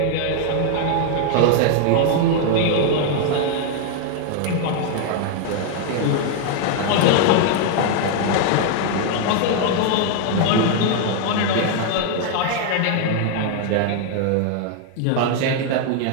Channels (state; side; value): different; both; correlation 0.00